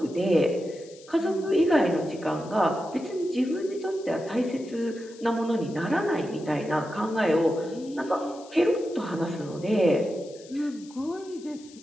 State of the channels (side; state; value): left; noise; hiss, 22 dB below the sound